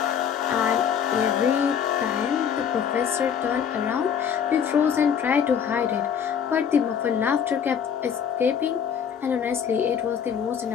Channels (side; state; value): right; quieter; 7.8 dB